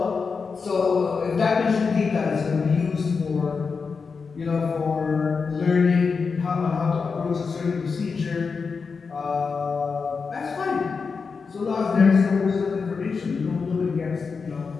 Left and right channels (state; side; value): quieter; right; 5.1 dB